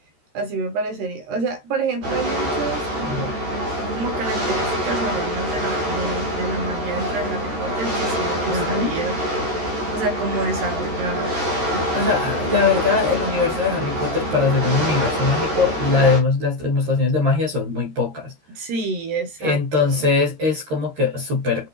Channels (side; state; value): left; late; 13 ms